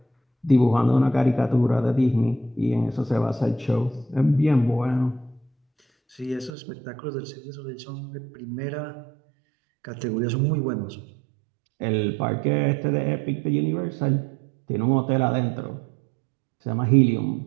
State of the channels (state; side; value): drops out; left; at 6.5 s